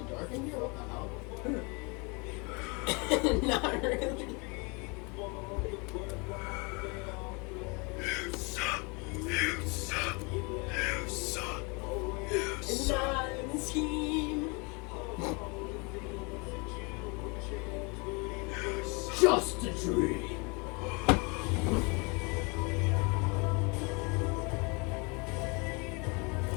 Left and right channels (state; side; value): quieter; right; 30.5 dB